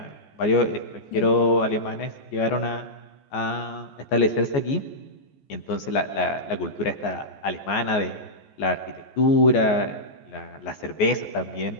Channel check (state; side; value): late; right; 14 ms